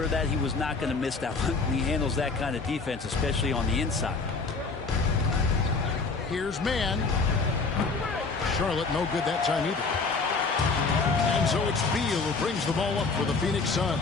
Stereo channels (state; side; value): quieter; right; 4.3 dB